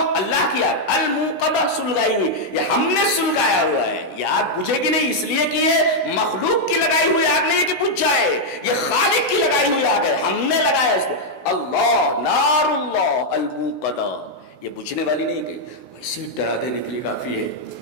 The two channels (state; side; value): late; right; 16 ms